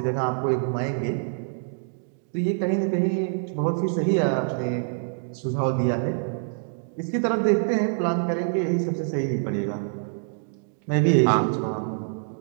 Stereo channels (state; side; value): silent; left; digital silence